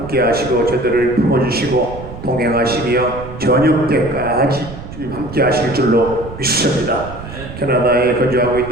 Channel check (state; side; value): noise; right; rumble, 12 dB below the sound